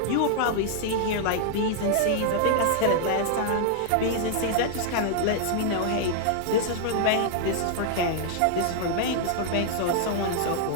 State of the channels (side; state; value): both; different; correlation -0.01